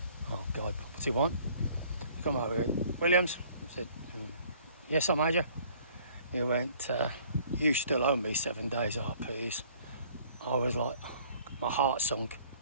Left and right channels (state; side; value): inverted; both; correlation -0.56